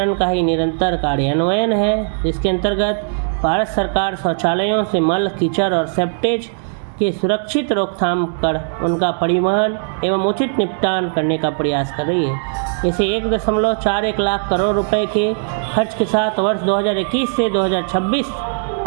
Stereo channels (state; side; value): silent; left; digital silence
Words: का ही निरंतर कार्यान्वयन है, जिसके अंतर्गत भारत सरकार शौचालयों से मल, कीचड़ और सेप्टेज के सुरक्षित रोकथाम कर उनका परिवहन एवं उचित निपटान करने का प्रयास कर रही है। इसे 1.41 लाख करोड़ रुपए के खर्च के साथ वर्ष 2021 से 2026